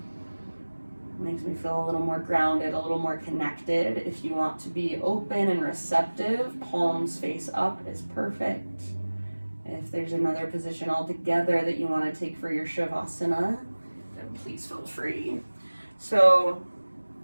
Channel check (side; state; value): both; inverted; correlation -1.00